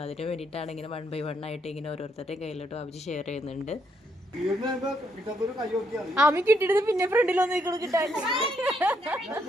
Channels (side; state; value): both; normal; correlation 0.74